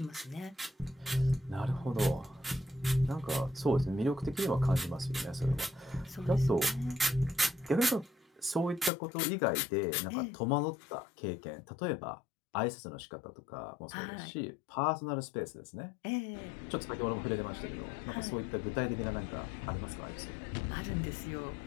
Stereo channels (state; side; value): drops out; right; at 8.9 s